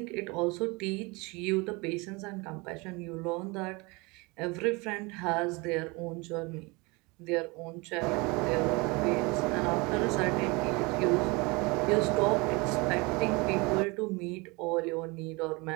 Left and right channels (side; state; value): left; quieter; 26.4 dB